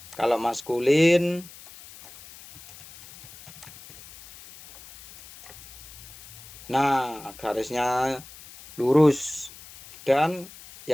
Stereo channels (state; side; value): noise; left; hiss, 19 dB below the sound